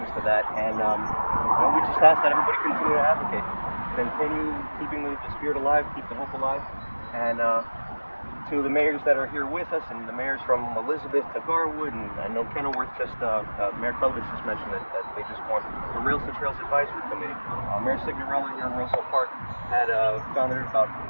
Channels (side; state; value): both; inverted; correlation -1.00